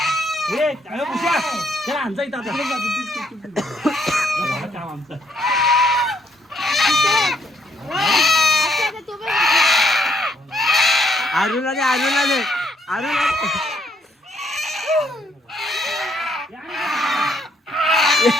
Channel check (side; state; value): both; normal; correlation 0.70